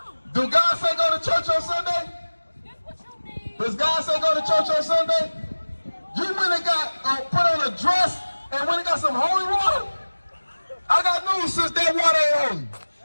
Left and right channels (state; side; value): inverted; both; correlation -1.00